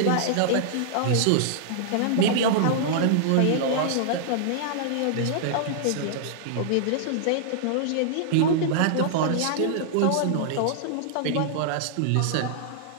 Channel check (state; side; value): different; both; correlation -0.01